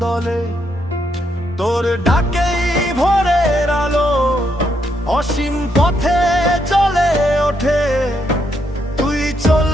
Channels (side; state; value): both; normal; correlation 0.77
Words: দলে। তোর ডাকেই ভোরের আলো অসীম পথে চলে ওঠে। তুই